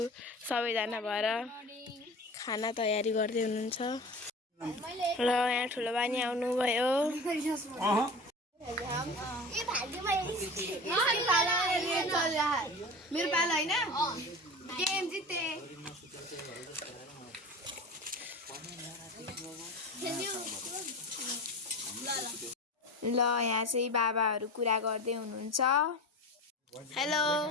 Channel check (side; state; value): both; normal; correlation 0.33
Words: सबैजना भएर खाना तयारी गर्दै हुनुहुन्छ। ल यहाँ ठुलो बानी आउनुभयो। मेरो पालो होइन गेम जिते। ल यहाँ चाहिँ बाबाहरू कुरा गर्दै हुनुहुन्छ। हेलो,